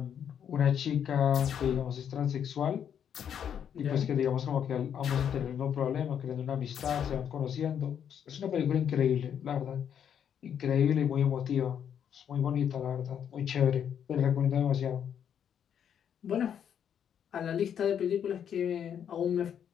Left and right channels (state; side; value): quieter; right; 8.6 dB